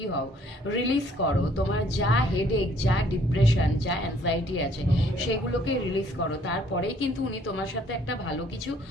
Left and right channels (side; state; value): both; normal; correlation 0.62